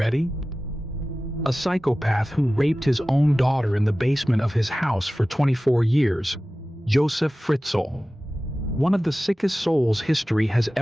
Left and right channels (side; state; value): both; normal; correlation 0.96